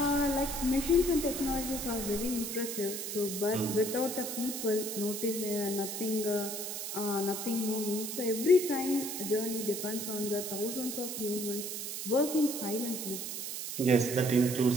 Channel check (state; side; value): noise; right; hiss, 5 dB below the sound